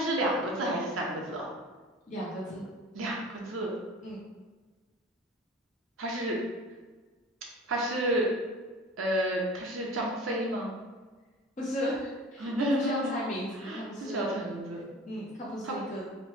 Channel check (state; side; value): normal; both; correlation 0.40